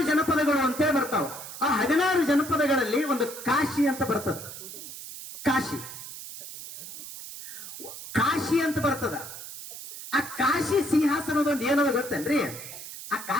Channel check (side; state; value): right; noise; hiss, 11 dB below the sound